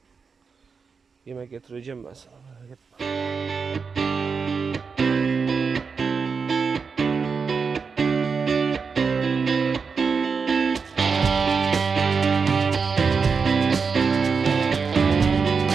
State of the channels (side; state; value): left; quieter; 5.4 dB